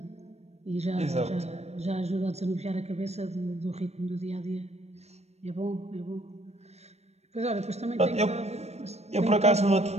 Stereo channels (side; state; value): left; late; 0.31 ms